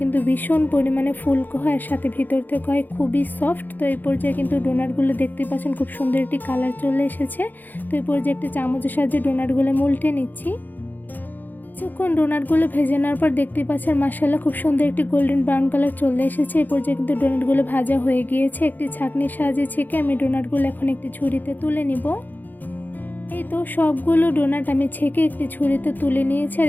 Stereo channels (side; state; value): right; late; 0.086 ms